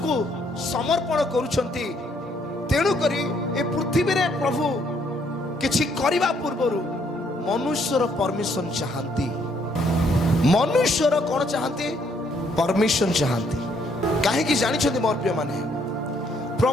ସମର୍ପଣ କରୁଛନ୍ତି, ତେଣୁକରି ଏ ପୃଥିବୀରେ ପ୍ରଭୁ କିଛି କରିବା ପୂର୍ବରୁ ମନୁଷ୍ୟର ପରମିଶନ ଚାହାନ୍ତି। ମନୁଷ୍ୟର କଣ ଚାହାନ୍ତି? ପରମିଶନ ଚାହାନ୍ତି। କାହିଁକି ଜାଣିଛନ୍ତି ମୋର ପ୍ରିୟମାନେ?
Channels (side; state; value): both; normal; correlation 0.69